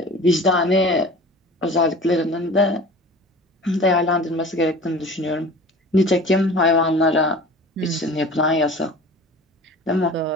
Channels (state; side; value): normal; both; correlation 0.40